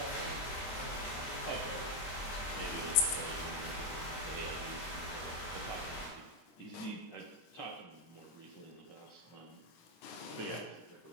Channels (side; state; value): right; late; 24 ms